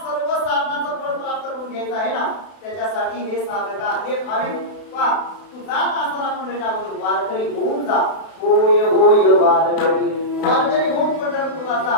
सर्व साधनाचं फळ प्राप्त करून घ्यायचं आहे ना, त्याच्यासाठी हे साधका, हे भाविक पा तू जात असताना आपण वारकरी होऊन जा. होय होय वारकरी होऊन पंढरपूरला जा.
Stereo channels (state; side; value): late; right; 32 ms